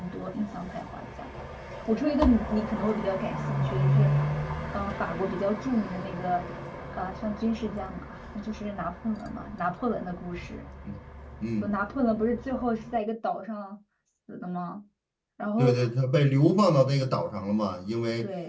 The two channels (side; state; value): both; identical; correlation 1.00